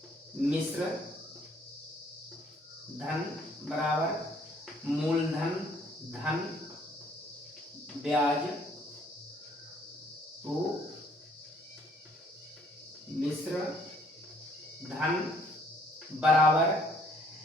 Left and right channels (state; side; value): normal; both; correlation 0.63